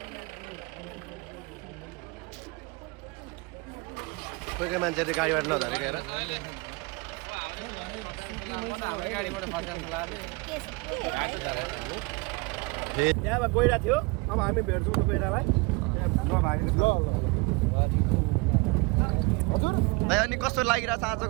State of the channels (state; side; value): quieter; left; 26.7 dB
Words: कोही कोही मान्छेले गाडीबाट नझरेको हेर हाम्रो गाडीबाट फसेको त्यहाँबाट गइरहेको थियो अब हामी भेट्छौँ त गइरहेलाई भाइ अनि कस्तो लागिरहेछ